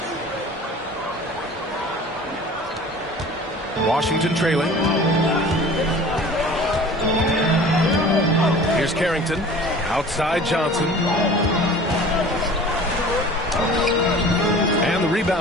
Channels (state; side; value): normal; both; correlation 0.43